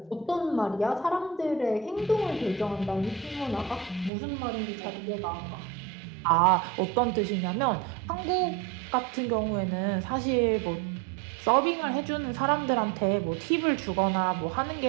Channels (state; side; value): drops out; left; at 4.1 s